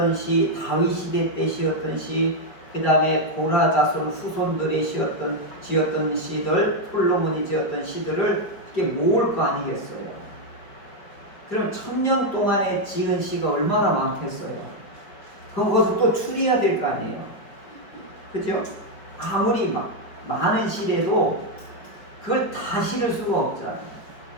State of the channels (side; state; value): right; late; 5.0 ms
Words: 시, 다윗 시대 때 시였던 시, 그 다음에 고라 자손 후손들이 지었던 시들, 솔로몬이 지었던 시들을 이렇게 모을 거 아니겠어요. 그럼 1000년 동안에 지은 시가 얼마나 많겠어요. 그럼 그것을 또 추리해야 될 거 아니에요. 그죠? 아무리 많은 시래도 그걸 다 실을 수가 없잖아요.